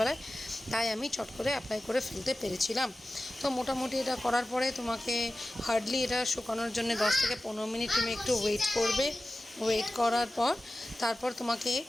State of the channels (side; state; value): both; normal; correlation 0.95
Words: তাই আমি চট করে অ্যাপ্লাই করে ফেলতে পেরেছিলাম। তো মোটামুটি এটা করার পরে তোমাকে হার্ডলি এটা শুকানোর জন্য 10 থেকে 15 মিনিট তুমি একটু ওয়েট করবে। ওয়েট করার পর তারপর তোমাকে